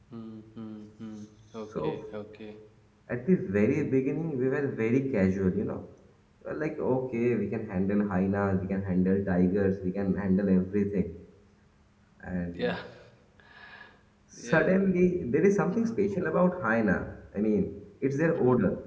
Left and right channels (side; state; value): both; identical; correlation 1.00